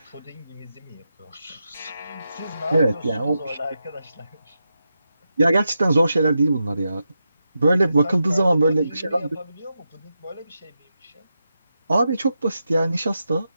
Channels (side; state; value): both; inverted; correlation -0.87